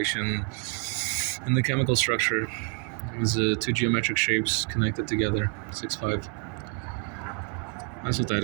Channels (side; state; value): left; quieter; 35.1 dB